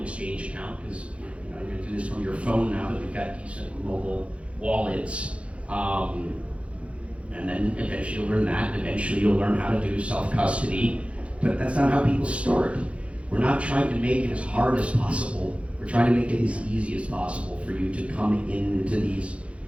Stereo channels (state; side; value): late; left; 0.062 ms